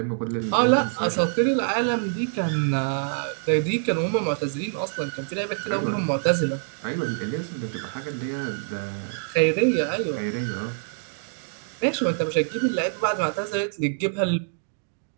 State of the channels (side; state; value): left; silent; digital silence